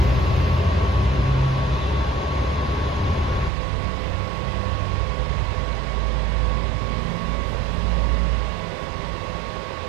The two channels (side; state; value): left; drops out; at 3.5 s